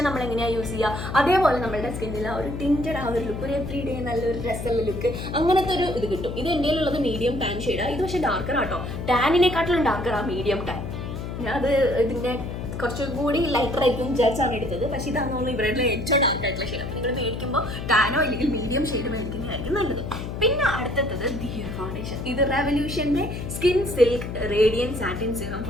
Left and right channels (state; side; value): noise; left; hum, 6 dB below the sound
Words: നമ്മൾ എങ്ങനെയാണ് യൂസ് ചെയ്യുക അതേപോലെ നമ്മളുടെ സ്കിന്നിൽ ആ ഒരു ടിൻറ്റഡ് ആ ഒരു ലുക്ക്, ഒരു എവറി ഡേ നല്ലൊരു രസമുള്ള ലുക്ക്, അങ്ങനത്തെ ഒരു ഇത് കിട്ടും. ഇത് എൻ്റെ ഉള്ളത് മീഡിയം ടാൻ ഷെയ്ഡാണ്. ഇത് പക്ഷേ ഡാർക്കർ ആട്ടോ. ടാനിനെക്കാട്ടിലും ഡാർക്കറാണ് മീഡിയം ടാൻ. അത് ഇതിൻ്റെ കുറച്ചുകൂടി ലൈറ്റർ ആയിരിക്കും വിചാരിച്ചാണ് എടുത്തത്. പക്ഷേ ഇതാണ് തോന്നുന്നു ഇവരുടെ ഏറ്റവും ഡാർക്ക് ആയിട്ടുള്ള ഷെയ്ഡ്. അപ്പോൾ നിങ്ങൾ മേടിക്കുമ്പോൾ ടാനോ അല്ലെങ്കിൽ മീഡിയം ഷെയ്ഡ് മേടിക്കുന്നതായിരിക്കും നല്ലത്. പിന്നെ അടുത്തത് ദിയർ ഫൗണ്ടേഷൻ. ഇത് റെവല്യൂഷൻ്റെ skin silk radiant satin serum